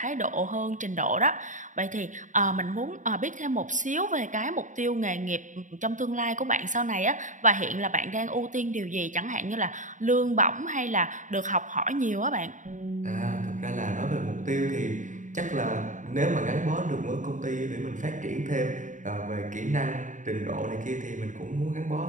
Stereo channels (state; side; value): late; left; 0.37 ms